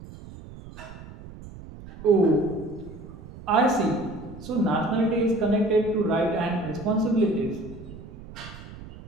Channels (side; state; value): right; noise; rumble, 16 dB below the sound